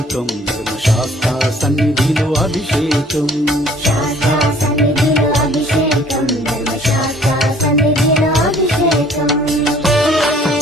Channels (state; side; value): normal; both; correlation 0.56